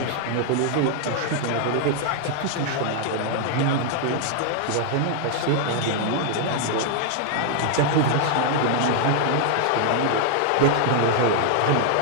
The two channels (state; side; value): different; both; correlation 0.00